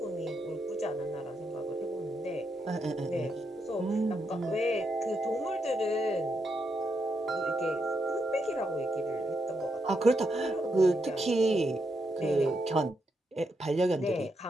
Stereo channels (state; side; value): normal; both; correlation 0.81